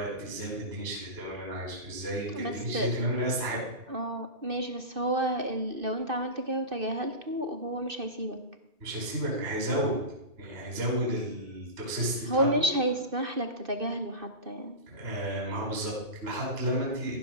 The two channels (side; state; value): left; late; 2.6 ms